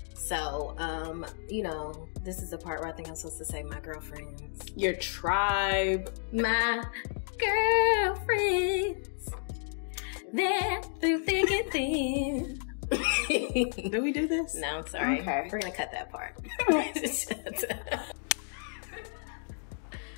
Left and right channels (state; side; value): silent; right; digital silence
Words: So, this is the part where I think I'm supposed to say my girlfriends. Your tribe. My girlfriends. They're through thick and thin. Did we do this? No, I'm sorry. Okay. We're going to cut that part.